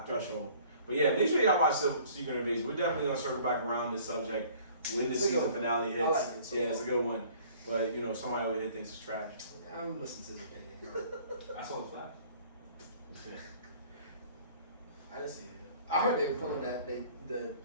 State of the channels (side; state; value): both; inverted; correlation -0.53